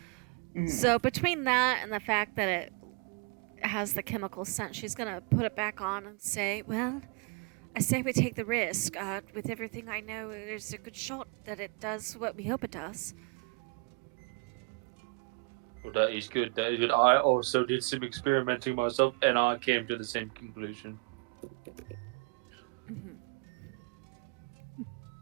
Mhm. So between that and the fact that it has the chemical scent, she's gonna put it back on and say, "Well, I say we take the risk. With everything I know, there's a good shot that it does what we hope it does." Well, that is good. That is good. I also did some experimenting myself, and I came to the same conclusion. Mhm.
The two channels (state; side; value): quieter; left; 32.8 dB